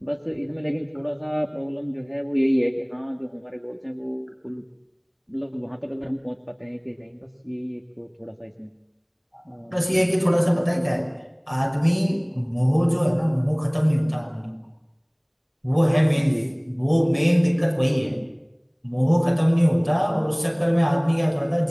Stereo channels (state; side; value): identical; both; correlation 1.00